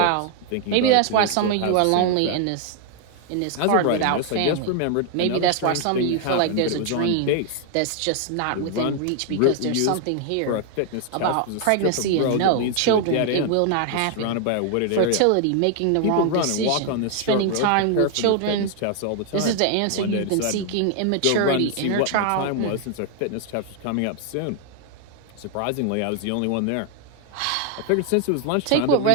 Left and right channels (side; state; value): both; different; correlation 0.00